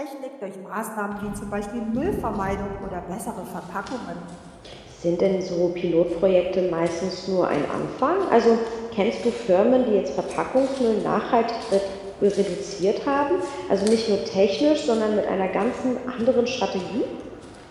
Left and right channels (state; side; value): identical; both; correlation 1.00